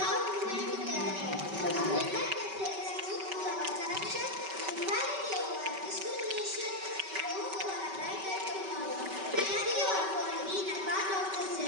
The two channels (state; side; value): late; left; 5.2 ms